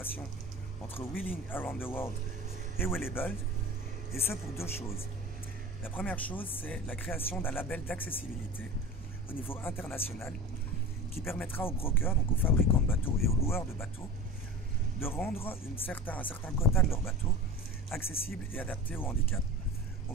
entre Wheeling Around the World et Well-Abled, et ce pour 2 choses. La première chose, c'est la création d'un label d'accessibilité au niveau international qui permettra aux brokers, donc aux fabricants de bateaux et aux loueurs de bateaux, de rendre un certain quota de leurs bateaux accessibles et adaptés au handicap.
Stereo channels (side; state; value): both; normal; correlation 0.34